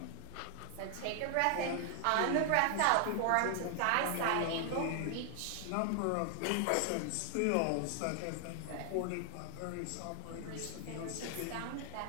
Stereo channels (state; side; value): different; both; correlation 0.00